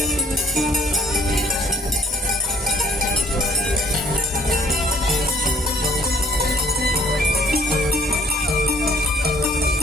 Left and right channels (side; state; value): both; normal; correlation 0.60